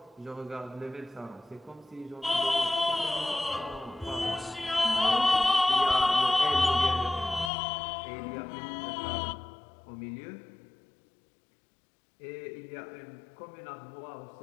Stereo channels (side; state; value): right; drops out; at 7.5 s